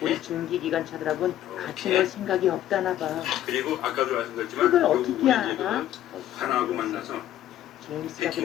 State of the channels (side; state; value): right; quieter; 12.4 dB